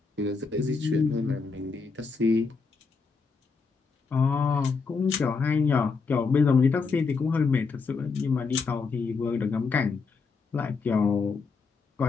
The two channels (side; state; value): right; quieter; 4.8 dB